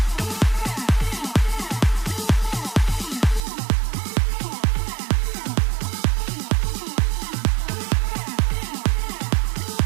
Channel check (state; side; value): drops out; left; at 3.4 s